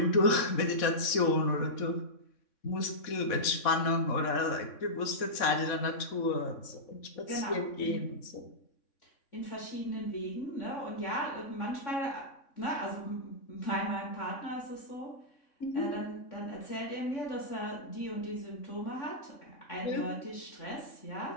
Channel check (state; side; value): late; right; 3.6 ms